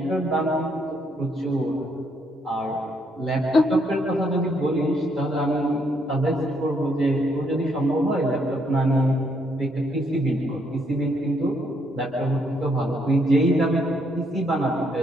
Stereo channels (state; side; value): normal; both; correlation 0.72